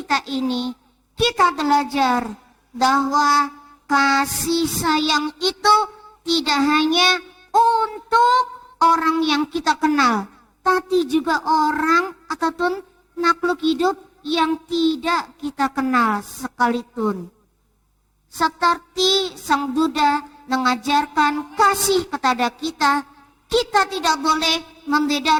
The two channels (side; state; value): both; identical; correlation 1.00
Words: ini kita belajar bahwa kasih sayang itu tidak hanya untuk orang yang kita kenal, tapi juga orang ataupun makhluk hidup yang tidak kita kenal sekalipun. Seperti Sang Buddha mengajarkan kasih kepada kita, kita tidak boleh